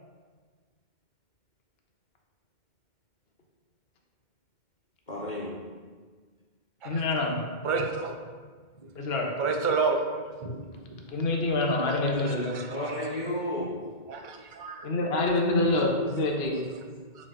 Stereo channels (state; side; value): late; right; 2.1 ms